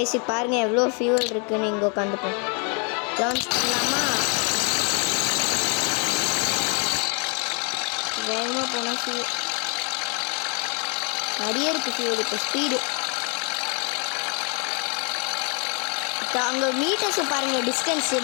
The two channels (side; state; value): right; quieter; 36.2 dB